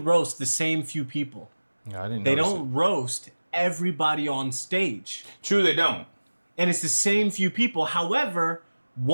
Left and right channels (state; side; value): inverted; both; correlation -1.00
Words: the same few people. Yeah, I didn't. They don't roast everybody on stage. True, they don't. And it's the same few people. However,